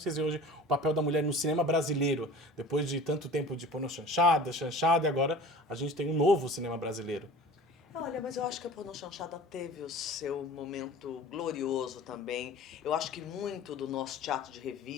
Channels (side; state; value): both; normal; correlation 0.40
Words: vocês vê hoje o papel da mulher no cinema brasileiro, depois de tanto tempo de pornô chanchada, e agora a gente tem um novo cinema brasileiro? Olha, mas eu acho que a Pornô Chanchada teve o seu momento glorioso também. Eu acho que muito do nosso teatro de